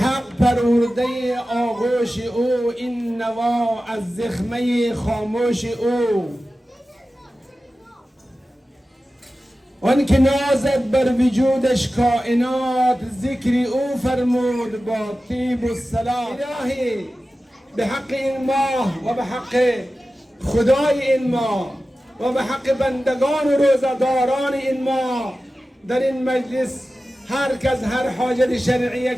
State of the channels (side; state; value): both; normal; correlation 0.94